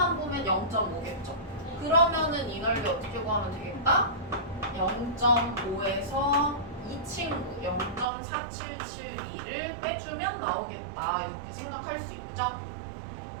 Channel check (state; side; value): drops out; left; at 8.1 s